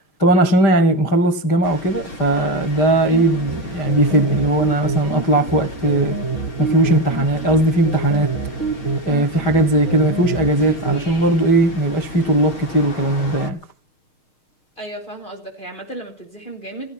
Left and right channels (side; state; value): right; late; 6.5 ms